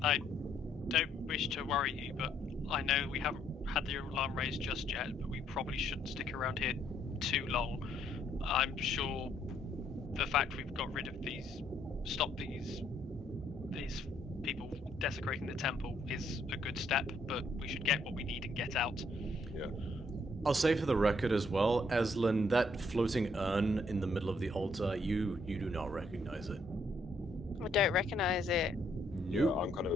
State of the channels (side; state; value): both; normal; correlation 0.69